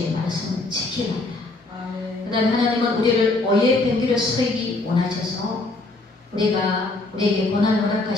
말씀을 지키나이다. 그 다음에 하나님은 우리를 오해의 변기를 서기 원하셔서 우리에게 고난을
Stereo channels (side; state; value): right; quieter; 3.1 dB